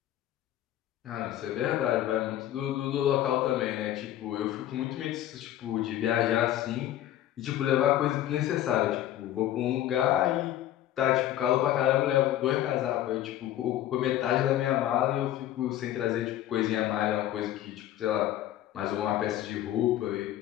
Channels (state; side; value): quieter; right; 12.8 dB